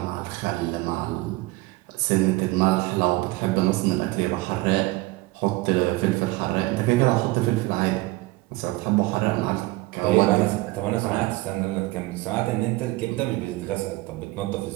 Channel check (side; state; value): left; quieter; 20.9 dB